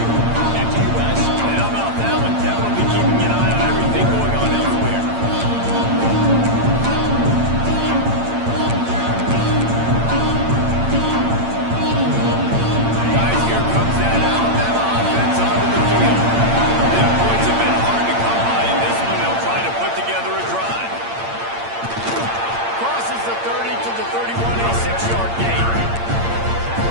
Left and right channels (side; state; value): left; late; 8.8 ms